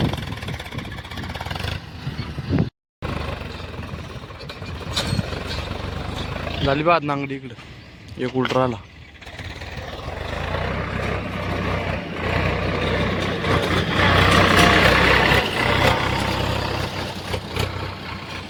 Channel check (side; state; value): both; identical; correlation 1.00